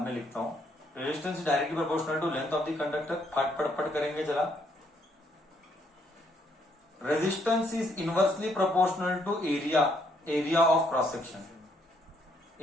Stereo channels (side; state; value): both; normal; correlation 0.70